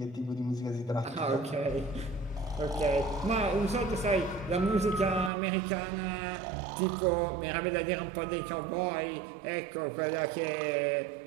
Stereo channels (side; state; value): left; drops out; at 5.3 s